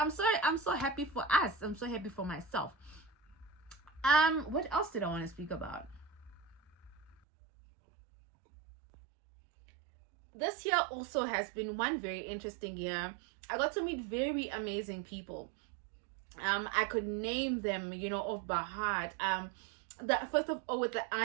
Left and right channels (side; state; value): left; drops out; at 7.2 s